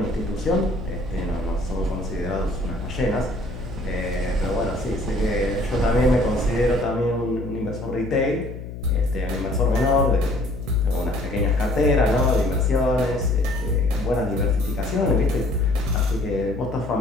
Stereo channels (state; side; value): noise; left; hum, 10 dB below the sound